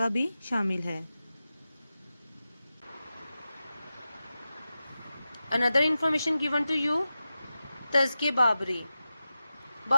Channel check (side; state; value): both; inverted; correlation -0.93